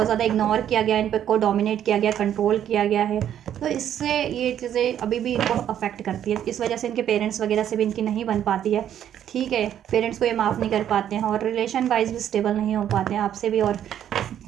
ज़्यादा इग्नोर किया गया, इन पर को डोमिनेट किया गया, कंट्रोल किया गया है, तो इससे ये चीज़ें अभी भी इनको अफेक्ट करती है। इस वजह से इनके पेरेंट्स वगैरह से भी इनकी नहीं बन पाती है, ठीक है। पेरेंट्स को ये माफ़ नहीं कर पाते हैं, और रिलेशन वाइज भी स्टेबल नहीं हो पाते हैं आपसे भी, और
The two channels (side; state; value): left; quieter; 10.3 dB